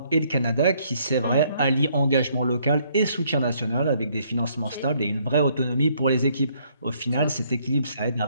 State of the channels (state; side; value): inverted; both; correlation -0.67